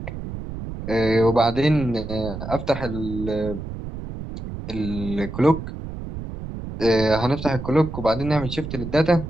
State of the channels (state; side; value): noise; right; rumble, 8 dB below the sound